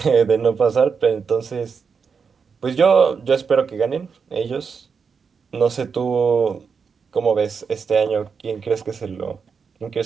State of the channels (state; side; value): quieter; left; 5.8 dB